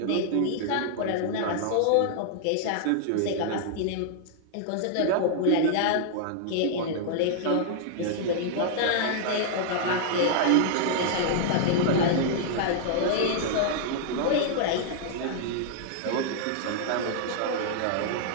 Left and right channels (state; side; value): different; both; correlation -0.01